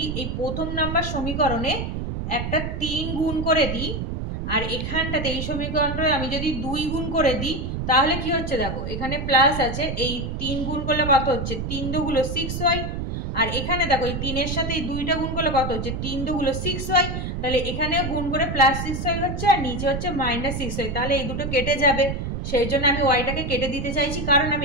এই প্রথম নাম্বার সমীকরণে একটা 3 গুণ করে দিই, আর এখানটাতে এই সমীকরণটা আমি যদি 2 গুণ করে দিই, তাহলে কি হচ্ছে দেখো, এখানে প্লাস আছে, এই 3 গুণ করলে কত হচ্ছে? 3 দুগুলো 6y। আর এখানে দেখো এই 3 এর সাথে এই 2টা গুণ করলে কত হচ্ছে? 3 দুগুলো 6y। তাহলে এখানে গুণ করে +6y হচ্ছে, আর নিচে হচ্ছে -6y। তাহলে এই দুটো কেটে যাবে, সেই জন্য আমি ওয়াইটাকে কেটে দিতে চাইছি, কারণ আমি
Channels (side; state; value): right; noise; rumble, 4 dB below the sound